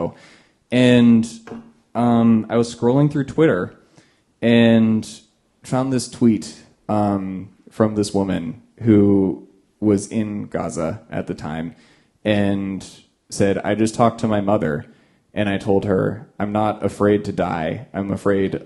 And I was scrolling through Twitter and found this tweet from this woman who was in Gaza at the time and said, "I just talked to my mother and I told her, I'm not afraid to die. I'm afraid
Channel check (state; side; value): identical; both; correlation 1.00